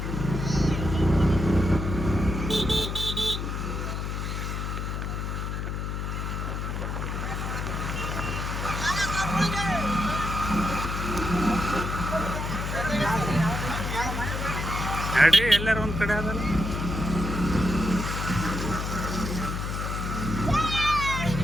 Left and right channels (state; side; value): noise; left; hum, 3 dB below the sound